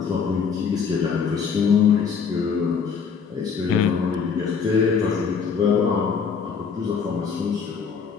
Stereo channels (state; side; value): quieter; right; 6.1 dB